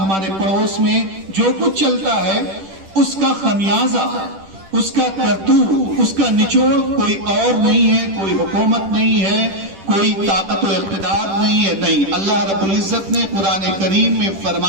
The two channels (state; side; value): late; left; 10 ms